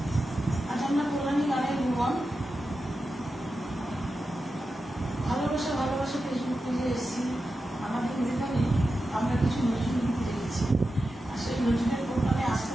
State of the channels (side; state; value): both; normal; correlation 0.91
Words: আজ আমরা কল্যাণী গানের ভুবন ভালোবাসা ভালোবাসা ফেসবুক পেজে এসেছি। আমাদের যেখানে আমরা কিছু নজরুল গীতি রেখেছি, আর সেই নজরুলের প্রোগ্রামে আসতে